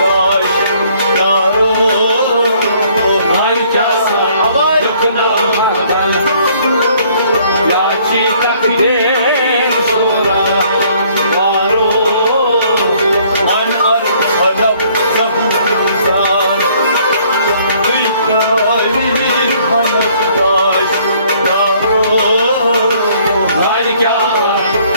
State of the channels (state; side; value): inverted; both; correlation -0.62